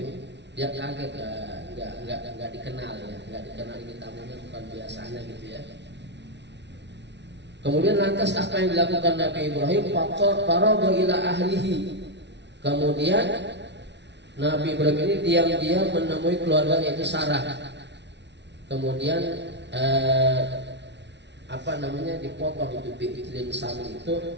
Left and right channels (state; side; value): late; left; 0.51 ms